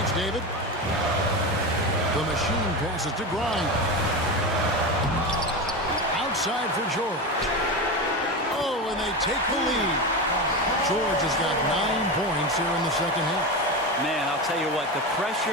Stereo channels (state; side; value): normal; both; correlation 0.20